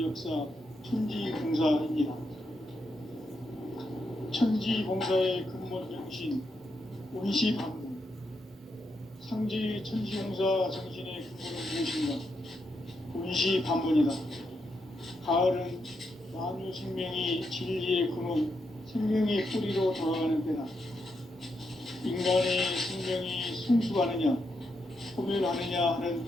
역사 천지봉사입니다. 천지봉사의 근본 정신 온시반문. 상지 천지봉사 정신의 근본은 무엇인가? 온시반문이다. 가을은 만유 생명이 진리의 근원, 생명의 뿌리로 돌아가는 때다. 인간의 생명이 성숙하느냐, 소멸하느냐 하는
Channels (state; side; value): normal; both; correlation 0.82